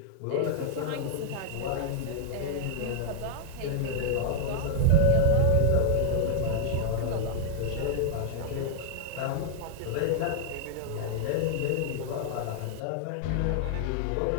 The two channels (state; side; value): different; both; correlation 0.00